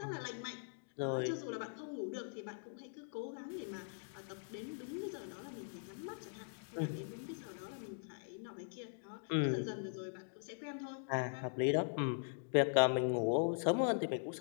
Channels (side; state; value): right; silent; digital silence